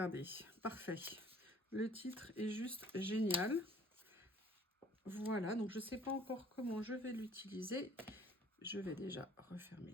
parfait. Le titre est juste génial. Voilà, donc je ne sais pas encore comment je vais l'utiliser. Je vais déjà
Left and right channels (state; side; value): normal; both; correlation 0.55